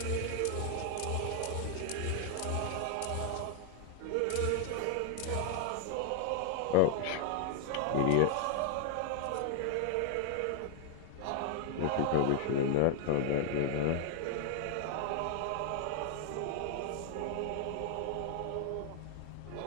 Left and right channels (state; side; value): different; both; correlation 0.00